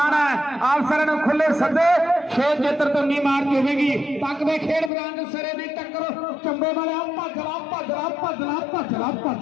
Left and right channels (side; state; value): right; drops out; at 4.9 s